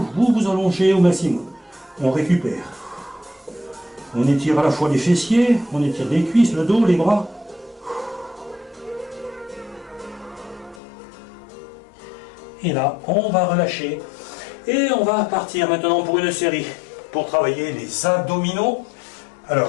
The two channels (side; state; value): right; drops out; at 10.8 s